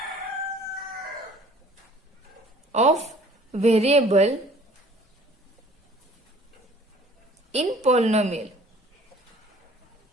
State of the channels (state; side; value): normal; both; correlation 0.52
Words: of variable in polynomial